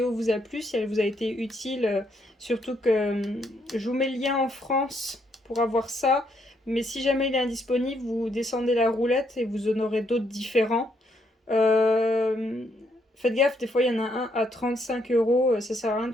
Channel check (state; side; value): normal; both; correlation 0.74